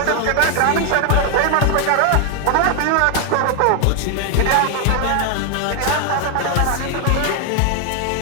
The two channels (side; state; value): both; different; correlation 0.01